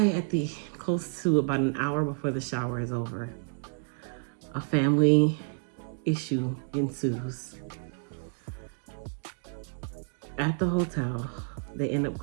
at the close to about an hour before the shower is over, a family issue ensues. At the hotel, they end up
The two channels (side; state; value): left; silent; 58 dB below the other